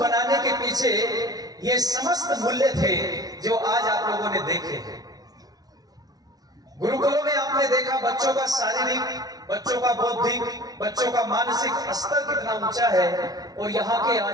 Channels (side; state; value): left; late; 0.19 ms